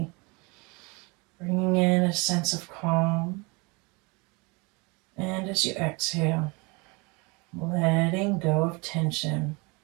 bringing in a sense of calm. And as you exhale, letting go of tension,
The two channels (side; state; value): left; quieter; 28.3 dB